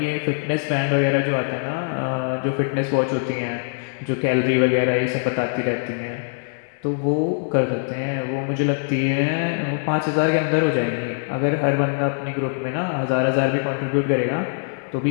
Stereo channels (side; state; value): right; silent; digital silence